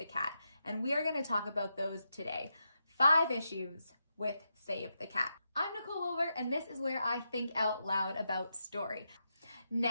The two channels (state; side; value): inverted; both; correlation -0.85